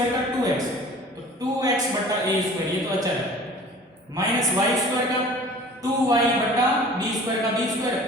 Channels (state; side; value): normal; both; correlation 0.45